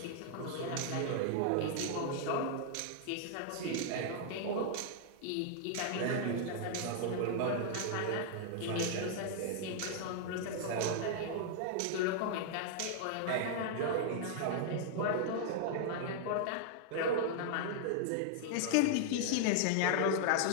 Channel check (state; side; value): different; both; correlation -0.01